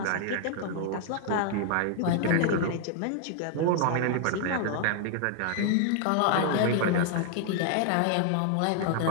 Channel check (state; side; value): different; both; correlation 0.00